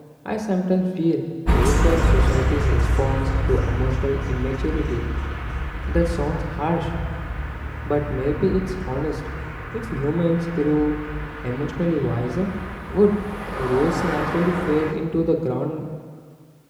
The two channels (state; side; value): identical; both; correlation 1.00